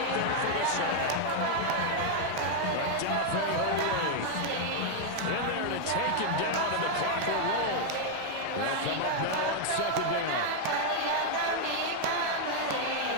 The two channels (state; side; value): different; both; correlation 0.00